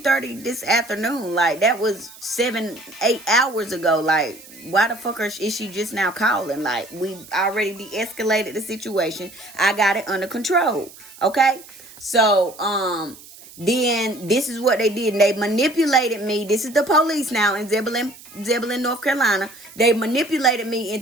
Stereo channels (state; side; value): noise; right; hiss, 20 dB below the sound